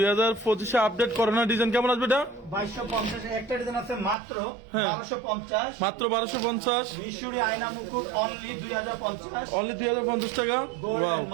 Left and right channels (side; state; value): left; drops out; at 4.2 s